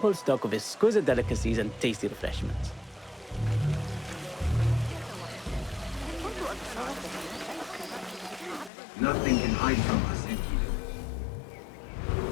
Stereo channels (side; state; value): right; drops out; at 8.7 s